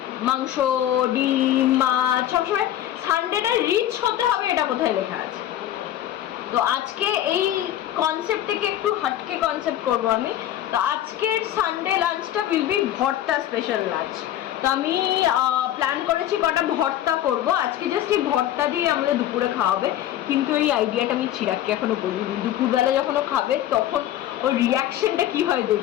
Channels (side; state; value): right; quieter; 12.3 dB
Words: মাংস, ডিম, মাছ, সবসময় সানডেটা রিচ হতে হবে, এটা কোথায় লেখা আছে? তো আজকে এই কনসেপ্ট থেকে একটু হটকে কনসেপ্ট করবো আমি। তো আজকের সানডে লাঞ্চটা উইল বি ভর্তা স্পেশাল লাঞ্চ। তো আমি প্ল্যান করেছি কটা ভর্তা করব আজকে, জাস্ট এই ভর্তা দিয়ে আমাদের দুপুরে খাওয়াবে। কিন্তু এই আইডিয়াটা আমি চিরাগকে এখনো বলিনি, দুপুরবেলা যখন ও খাবে তখন ওর রিয়াকশনটা কি হয়